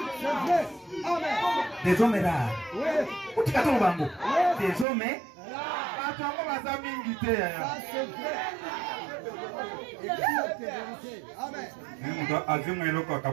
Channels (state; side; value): drops out; left; at 4.9 s